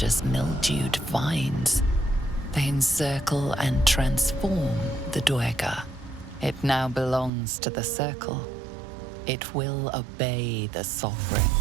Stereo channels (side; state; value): left; drops out; at 7.3 s